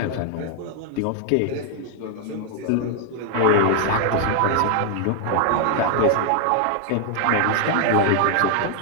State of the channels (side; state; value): both; different; correlation 0.00